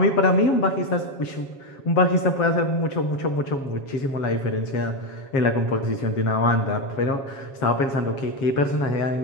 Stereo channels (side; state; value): right; late; 7.3 ms